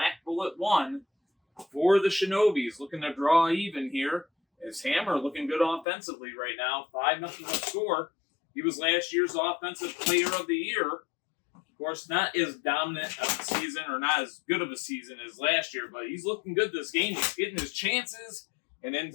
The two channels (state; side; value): drops out; right; at 5.9 s